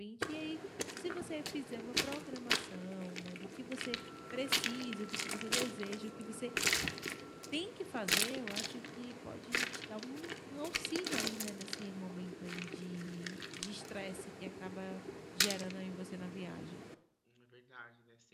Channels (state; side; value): identical; both; correlation 1.00